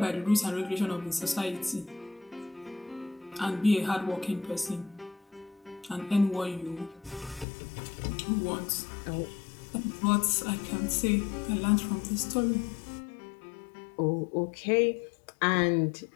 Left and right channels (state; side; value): drops out; right; at 7.5 s